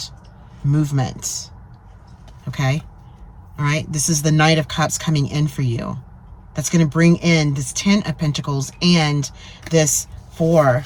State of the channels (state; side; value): identical; both; correlation 1.00